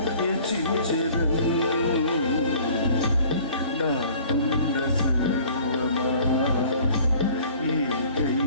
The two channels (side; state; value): both; inverted; correlation -0.50